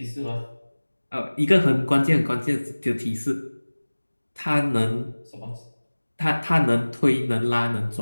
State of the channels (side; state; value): both; inverted; correlation -1.00